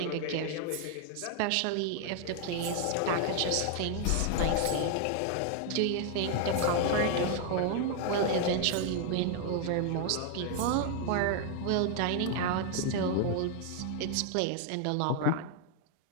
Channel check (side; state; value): both; different; correlation 0.00